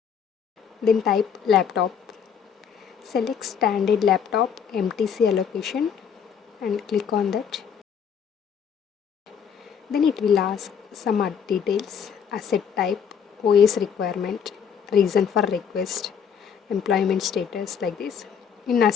Then type laptop. Select standard laptop MTC allocation and click on that. Then it will ask some other details, asset type, OS requirement, reason for request, employment status like this. In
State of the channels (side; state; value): right; quieter; 7.4 dB